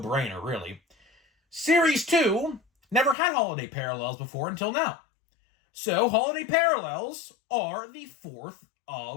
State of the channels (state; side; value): drops out; right; at 3.2 s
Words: really. Series 2 never had holiday parallels before until now. So, holiday parallels are the 4th